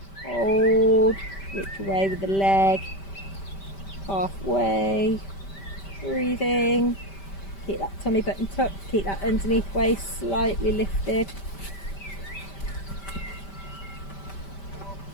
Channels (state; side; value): late; right; 5.1 ms